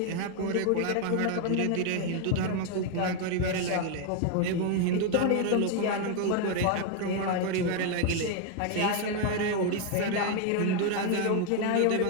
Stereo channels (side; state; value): both; different; correlation 0.01